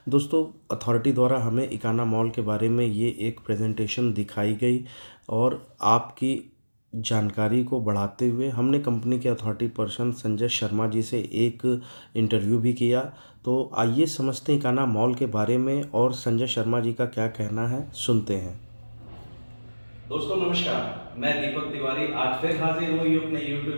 दोस्तों अथॉरिटी द्वारा हमें इकाना मॉल के बारे में ये एक प्रेजेंटेशन दिखाई गई और आपकी जानकारी को बढ़ाते हुए हमने कंपनी के अथॉरिटी पर्सन संजय शर्मा जी से एक इंटरव्यू भी किया। तो आइए समझते हैं इकाना मॉल के बारे में और संजय शर्मा जी का क्या कहना है, सुनते हैं। दोस्तों नमस्कार, मैं दीपक तिवारी आज फिर हाजिर हुई अपने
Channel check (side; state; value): both; inverted; correlation -1.00